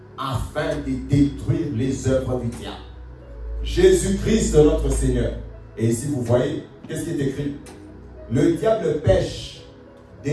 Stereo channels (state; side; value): identical; both; correlation 1.00